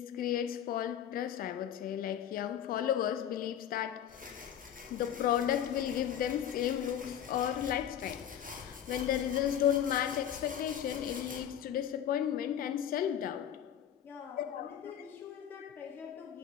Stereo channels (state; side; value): quieter; right; 9.8 dB